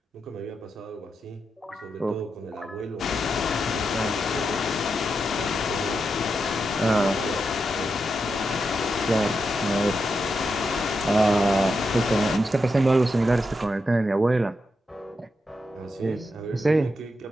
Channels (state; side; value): normal; both; correlation 0.86